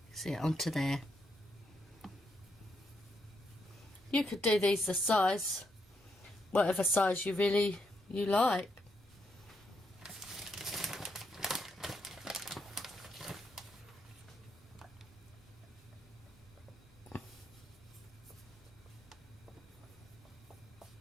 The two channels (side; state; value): both; normal; correlation 0.79